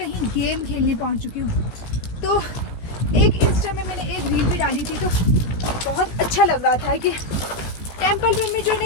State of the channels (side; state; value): right; late; 17 ms